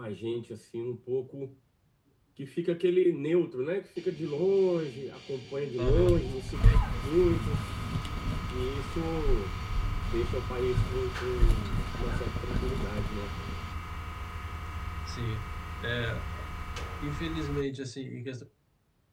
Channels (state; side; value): identical; both; correlation 1.00